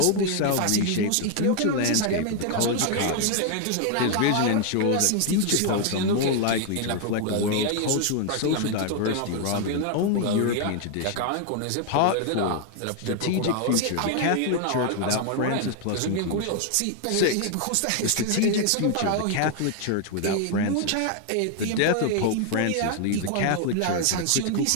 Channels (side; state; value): both; different; correlation 0.00